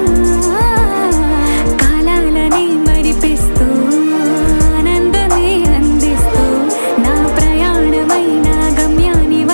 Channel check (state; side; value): inverted; both; correlation -1.00